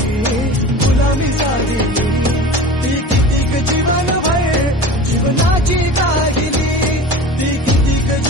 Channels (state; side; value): normal; both; correlation 0.37